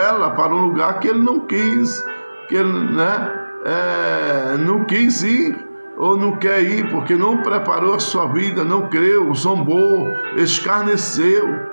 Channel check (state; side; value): inverted; both; correlation -1.00